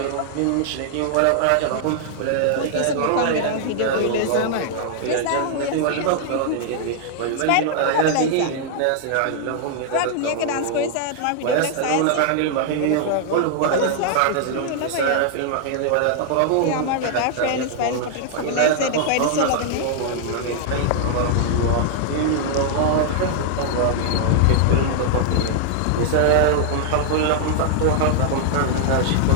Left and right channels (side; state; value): both; different; correlation -0.01